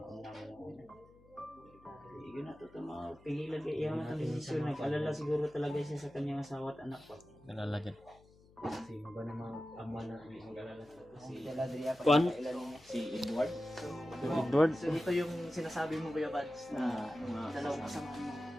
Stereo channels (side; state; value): left; noise; hum, 26 dB below the sound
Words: mo na. Yun na to mga pigilan kay iya nga desisyon. Nag-alala siguro talaga siya sa kanyang asawa at anak pa. Nalala dyan. Sino ba namang ama na may mag-alala sa Si Galadria pa Juan? si Edward? Edward? So dito yung sinasabi mo Kuya Bads na dalawang kasama mo.